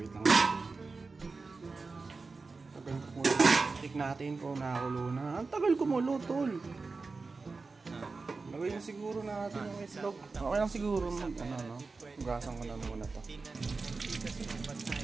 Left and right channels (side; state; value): left; quieter; 4.1 dB